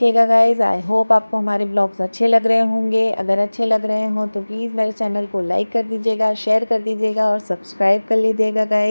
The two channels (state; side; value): inverted; both; correlation -1.00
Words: गाइस। आई होप आपको हमारे व्लॉग्स अच्छे लग रहे होंगे। अगर अच्छे लग रहे हों तो प्लीज़ मेरे चैनल को लाइक कर दीजिएगा, शेयर कर दीजिएगा और सब्सक्राइब कर लीजिएगा